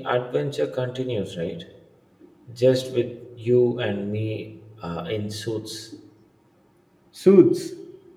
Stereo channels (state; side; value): identical; both; correlation 1.00